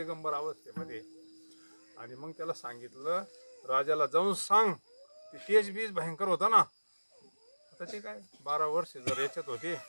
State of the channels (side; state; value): both; inverted; correlation -1.00